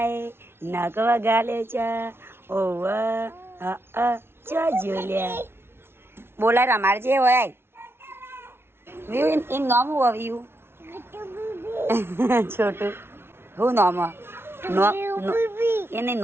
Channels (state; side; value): late; left; 0.12 ms